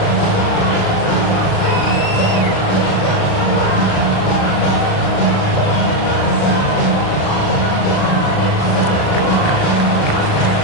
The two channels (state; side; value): late; right; 36 ms